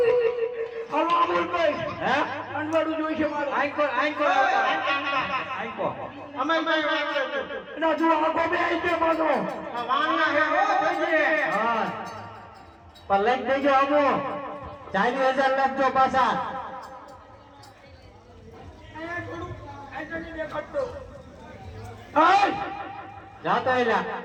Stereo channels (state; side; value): identical; both; correlation 1.00